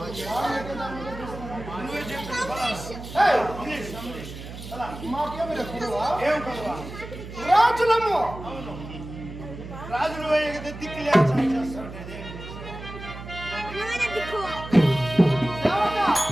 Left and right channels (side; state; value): right; noise; hum, 12 dB below the sound